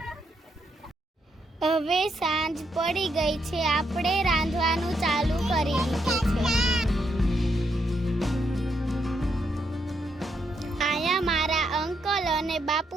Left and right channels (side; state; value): both; normal; correlation 0.78